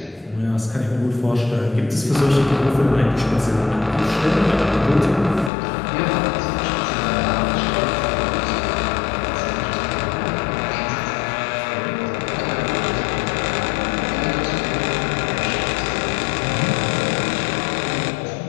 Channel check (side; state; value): right; drops out; at 5.5 s